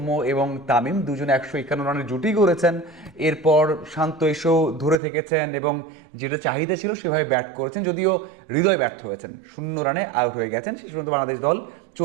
এবং তামিম দুজনে 151 রানের জুটি করেছেন, এরপর শান্ত এসেও ধরে থেকেছেন এবং যেটা চাহিদা ছিল সেভাবে ব্যাট করেছেন, যদিও হৃদয় ব্যর্থ হয়েছেন, 0 রানে আউট হয়ে গেছেন। শেষ পর্যন্ত বাংলাদেশ দল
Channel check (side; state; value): left; drops out; at 5.0 s